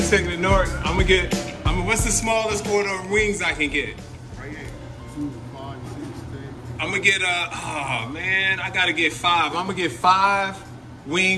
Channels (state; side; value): identical; both; correlation 1.00